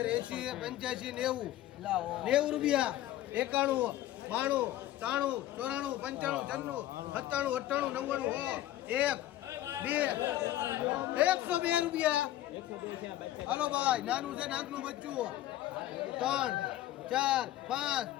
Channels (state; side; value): quieter; right; 13.8 dB